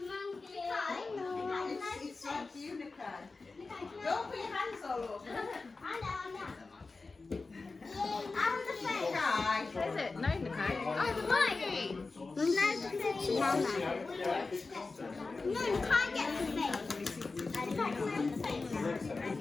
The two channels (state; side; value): quieter; right; 3.8 dB